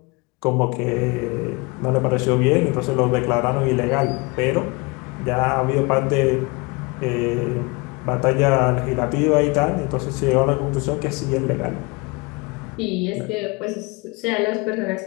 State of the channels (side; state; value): right; quieter; 26.9 dB